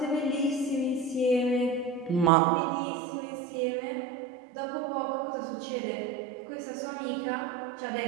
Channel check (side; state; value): left; drops out; at 2.3 s